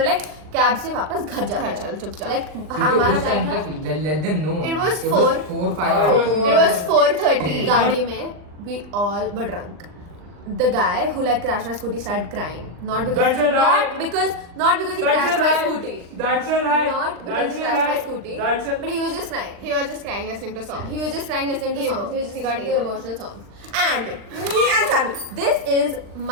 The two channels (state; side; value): late; left; 39 ms